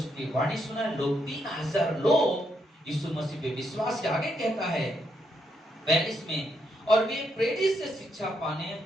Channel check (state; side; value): normal; both; correlation 0.78